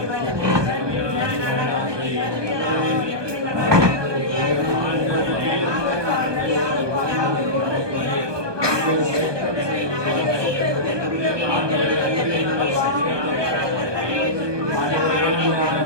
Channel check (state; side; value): late; left; 1.2 ms